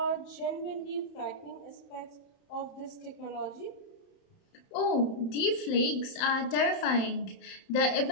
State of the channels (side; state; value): right; late; 31 ms